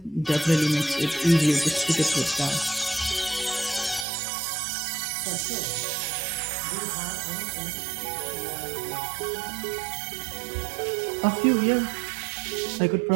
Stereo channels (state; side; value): drops out; left; at 4.0 s